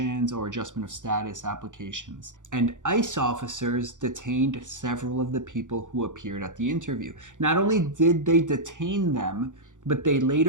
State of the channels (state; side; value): late; left; 0.86 ms